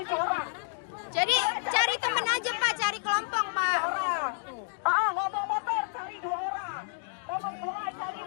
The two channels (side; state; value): right; silent; digital silence